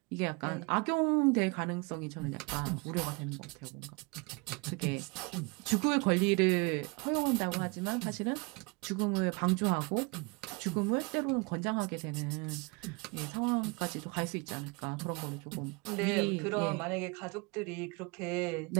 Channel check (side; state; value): left; quieter; 28.7 dB